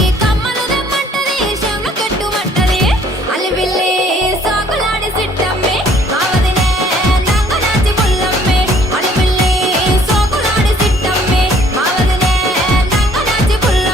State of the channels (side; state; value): both; normal; correlation 0.59